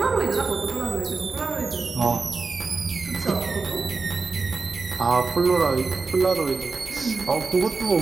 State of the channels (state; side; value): quieter; left; 4.2 dB